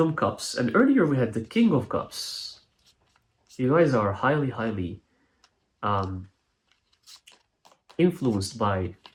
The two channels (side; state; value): both; identical; correlation 1.00